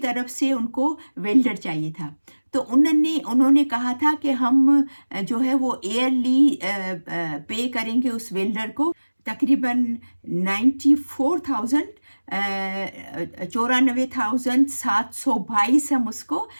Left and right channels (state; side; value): inverted; both; correlation -1.00